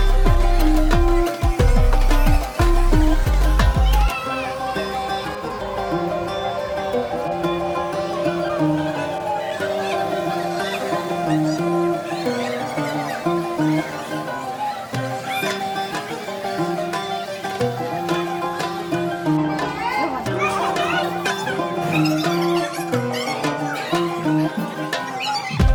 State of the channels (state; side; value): identical; both; correlation 1.00